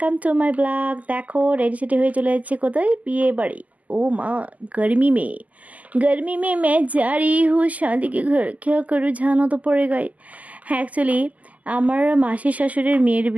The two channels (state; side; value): late; left; 0.075 ms